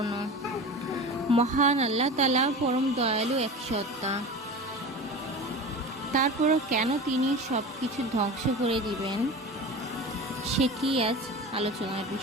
মহান আল্লাহ তাআলা পরম দয়ালু এক সত্তা। তারপরও কেন তিনি সব কিছু ধ্বংস করে দিবেন, সেটি আজ আলোচনার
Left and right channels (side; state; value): both; normal; correlation 0.32